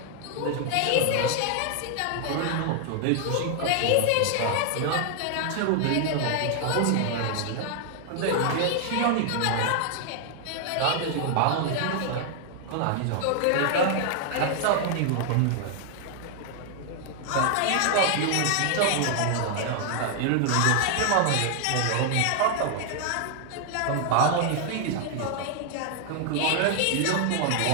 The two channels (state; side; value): different; both; correlation 0.00